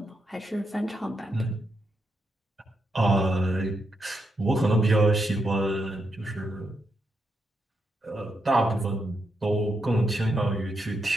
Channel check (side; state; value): both; normal; correlation 0.82